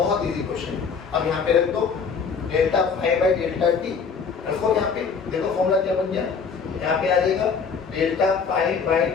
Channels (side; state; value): right; quieter; 5.7 dB